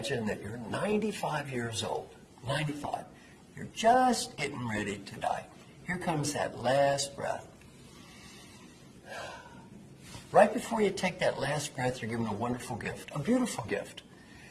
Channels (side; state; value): both; identical; correlation 1.00